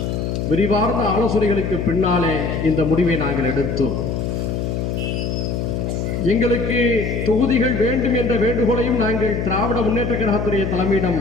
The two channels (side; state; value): left; noise; hum, 2 dB below the sound